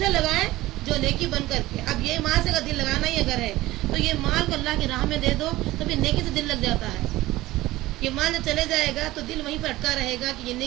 لگائیں جو نیکی بن کر کے۔ اب یہ ماں سے اگر دل لگانا ہی اگر ہے تو یہ مال کو اللہ کی راہ میں دے دو تو پھر نیکی سے دل لگ جاتا ہے۔ یہ مال جب چلے جائے گا تو دل وہیں پر اٹکا رہے گا کہ یہ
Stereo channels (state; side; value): quieter; left; 17.6 dB